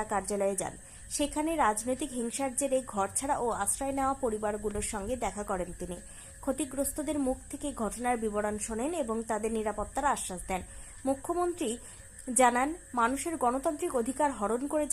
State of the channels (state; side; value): identical; both; correlation 1.00